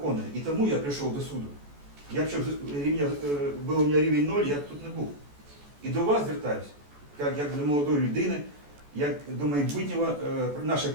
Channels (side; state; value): left; late; 14 ms